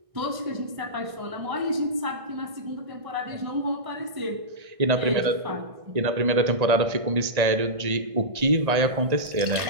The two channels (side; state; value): left; late; 1.6 ms